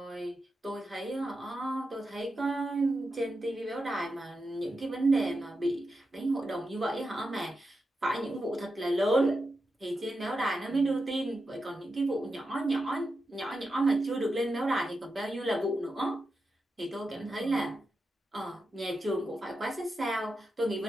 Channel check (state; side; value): normal; both; correlation 0.88